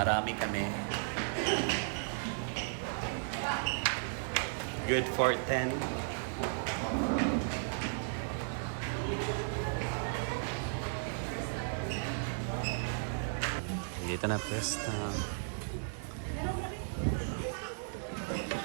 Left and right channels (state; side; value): silent; left; digital silence